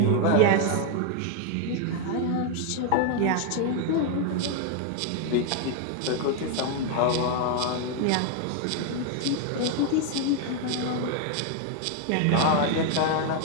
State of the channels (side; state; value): both; different; correlation 0.01